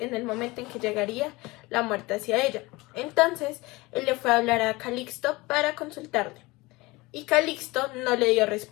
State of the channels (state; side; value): quieter; right; 22.3 dB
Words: el momento en que llegaría la muerte hacia ella. Entonces él le fue a hablar a Calixto para consultarle. Y Calixto no le dio